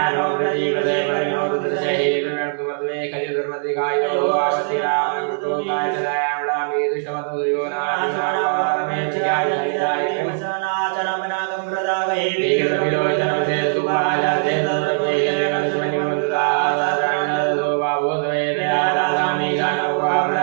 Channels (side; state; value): left; silent; digital silence